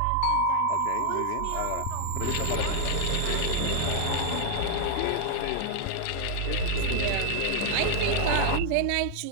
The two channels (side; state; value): both; different; correlation 0.00